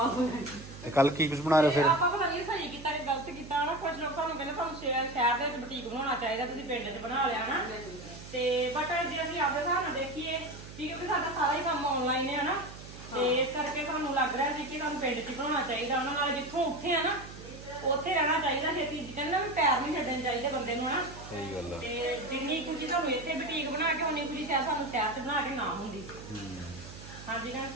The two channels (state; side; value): noise; right; hum, 15 dB below the sound